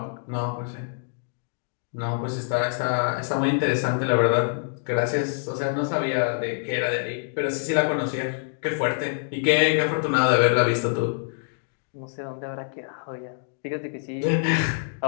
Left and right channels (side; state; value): right; silent; digital silence